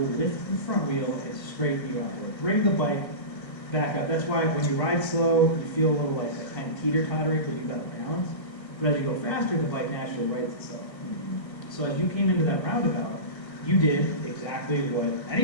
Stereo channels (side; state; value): right; late; 1.3 ms